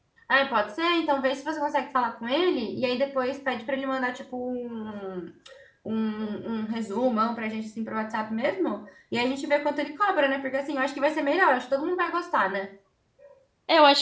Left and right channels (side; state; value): both; identical; correlation 1.00